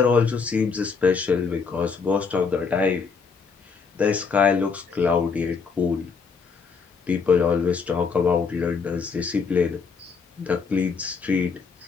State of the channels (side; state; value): right; quieter; 5.4 dB